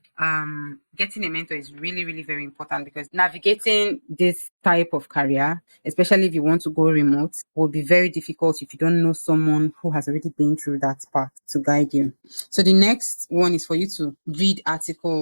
getting a mentor is really, really very important because navigating this type of career, especially if you want to go remote, will be very difficult if you don't know someone who has already been through that path to guide you. So the next one is for you to read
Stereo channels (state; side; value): inverted; both; correlation -1.00